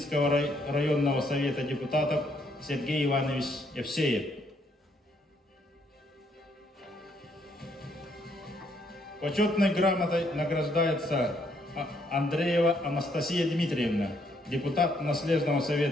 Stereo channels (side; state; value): both; normal; correlation 0.71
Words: районного совета депутатов Сергей Иванович Евсеев. Почетной грамотой награждается Андреева Анастасия Дмитриевна, депутат наследного